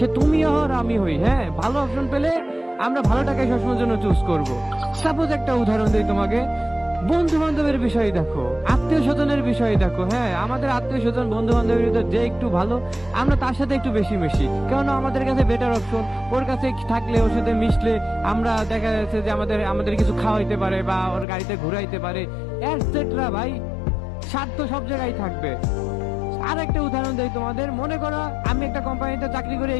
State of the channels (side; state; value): right; drops out; at 21.2 s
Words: তুমি হও আর আমি হই, হ্যাঁ, ভালো অপশন পেলে আমরা ভালোটাকে সবসময়ের জন্য চুজ করব। সাপোজ একটা উদাহরণ দিই তোমাকে, বন্ধু বান্ধবের বিষয় দেখো, আত্মীয় স্বজনের বিষয় দেখো। হ্যাঁ, আমাদের আত্মীয় স্বজন বন্ধু বান্ধবের ভিতর যে একটু ভালো, আমরা তার সাথে একটু বেশি মিশি, কারণ আমাদের কাছে বেটার অপশন। ওর কাছে থাকলে, ওর সাথে মিশলে আমরা দেখা যাচ্ছে যে আমাদের আমাদের কিছু খাওয়াইতে পারে বা ওর গাড়িতে ঘুরাইতে পারে, এটসেট্রা। ভাই, স্বার্থ সব জায়গায় থাকবে। আর একটা উদাহরণ দেই তোমাদের, মনে করো আমি একটা কোম্পানিতে চাকরি করি,